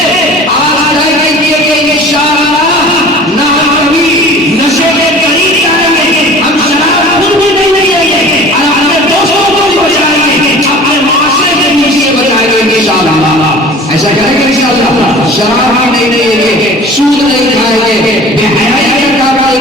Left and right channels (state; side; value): normal; both; correlation 0.43